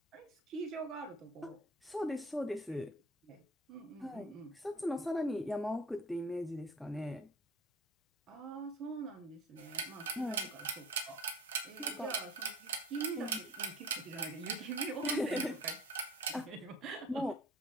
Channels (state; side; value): normal; both; correlation 0.43